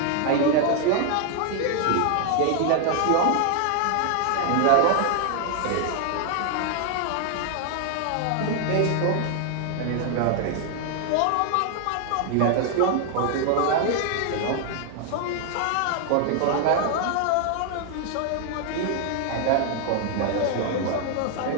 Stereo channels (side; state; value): both; different; correlation 0.00